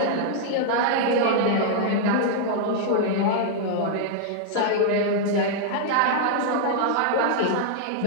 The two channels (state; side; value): different; both; correlation -0.01